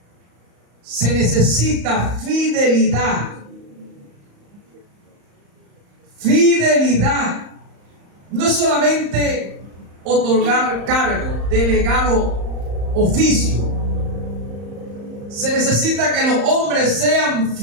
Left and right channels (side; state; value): left; late; 34 ms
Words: Se necesita fidelidad. Fidelidad. No es solamente otorgar cargo, delegar oficio. Se necesita que los hombres sean